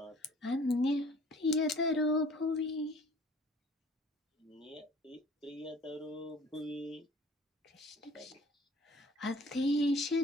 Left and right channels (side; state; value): both; normal; correlation 0.51